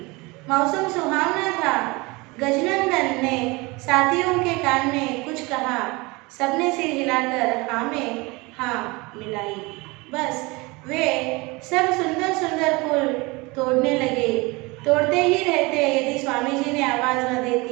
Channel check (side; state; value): left; quieter; 24.8 dB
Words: मौसम सुहावना था। गजनंदन ने साथियों के कान में कुछ कहा। सबने सिर हिलाकर हाँ में हाँ मिलाई। बस वे सब सुंदर सुंदर फूल तोड़ने लगे। तोड़ते ही रहते, यदि स्वामी जी ने आवाज न दे